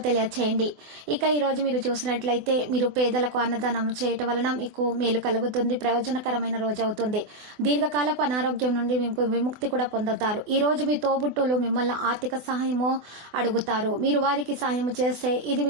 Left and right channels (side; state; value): left; late; 24 ms